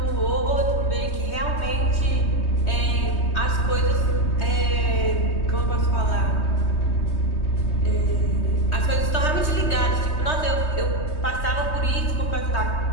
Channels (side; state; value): right; late; 3.2 ms